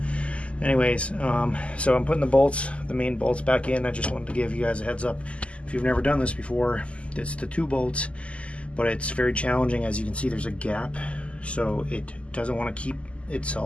Anyways, so I'm putting the main bolts back in. I just wanted to give you guys a heads up. If you've never done this before, it's the 2 bolts, but it's very challenging. As you can see, there's a gap, so it doesn't want to keep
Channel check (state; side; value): late; right; 0.058 ms